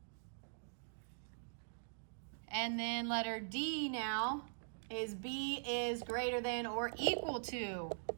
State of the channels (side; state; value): left; silent; digital silence